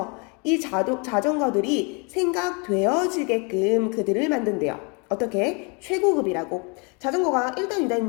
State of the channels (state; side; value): quieter; right; 32.9 dB